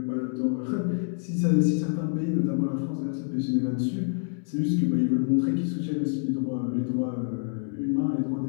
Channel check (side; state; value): right; silent; 60 dB below the other